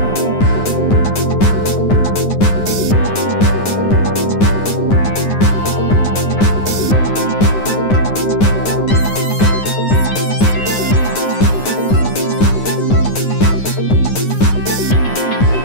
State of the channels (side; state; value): right; late; 9.7 ms